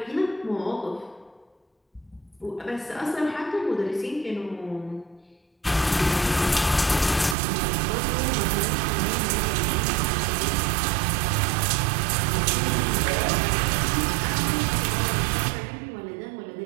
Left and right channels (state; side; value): drops out; left; at 7.4 s